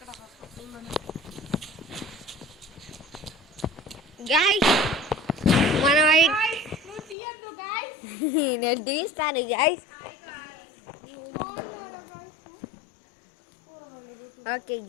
గైస్ మనం నేను తీస్తాను గైస్. ఓకే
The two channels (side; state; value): right; drops out; at 7.2 s